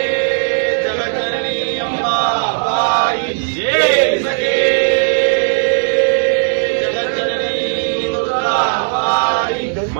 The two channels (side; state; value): left; silent; digital silence